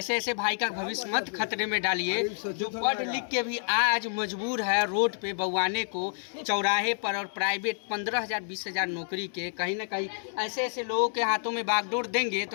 भाई का भविष्य मत खतरे में डालिए, जो पढ़ लिख के भी आज मजबूर है रोड पे बउआने को, चौराहे पर, और प्राइवेट 15,000 20,000 नौकरी के। कहीं ना कहीं ऐसे लोगों के हाथों में बागडोर देंगे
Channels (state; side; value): silent; right; 59 dB below the other